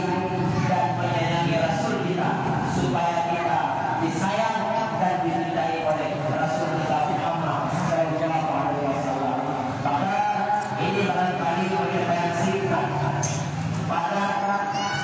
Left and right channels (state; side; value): identical; both; correlation 1.00